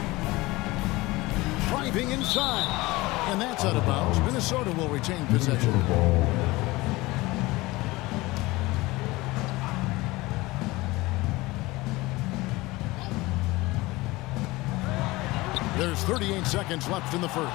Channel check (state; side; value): quieter; right; 20.9 dB